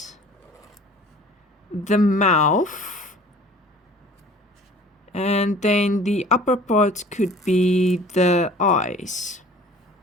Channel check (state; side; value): normal; both; correlation 0.48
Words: the mouth, and then the upper part could be the eyes.